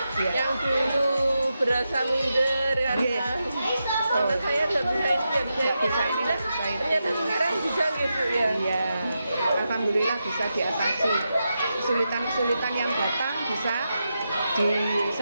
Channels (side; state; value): both; inverted; correlation -0.87